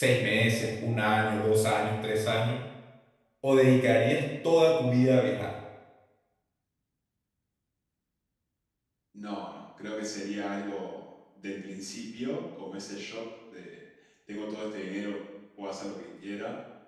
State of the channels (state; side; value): identical; both; correlation 1.00